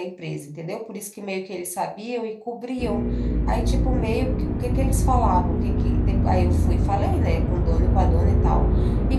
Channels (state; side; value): identical; both; correlation 1.00